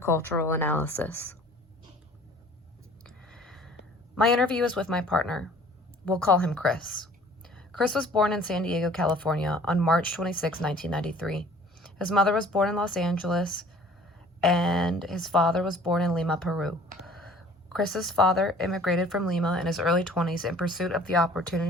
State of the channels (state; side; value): normal; both; correlation 0.51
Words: analysis. My interview is with my partner. We'll call him Chris. Chris was born in San Diego, California on March 26, 1993. His mother was born in Los Angeles, and his father was born in Lima, Peru. Chris's father immigrated from Lima in his early 20s in pursuit of the